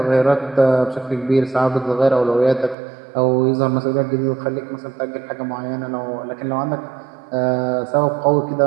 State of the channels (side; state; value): left; drops out; at 2.8 s